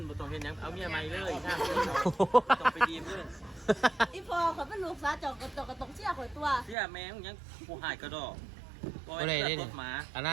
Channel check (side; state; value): left; drops out; at 6.8 s